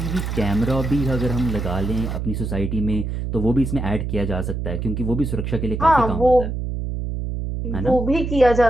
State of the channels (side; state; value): right; noise; hum, 3 dB below the sound